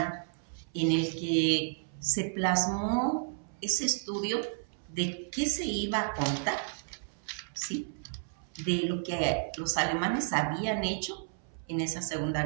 en el que se plasmó ese estudio de qué se iba a contar, ¿sí? De lo que los alemanes habían hecho en esa Segunda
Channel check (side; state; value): left; silent; 56 dB below the other